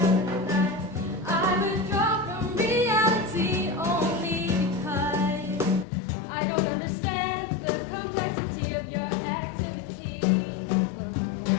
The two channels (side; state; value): right; drops out; at 5.9 s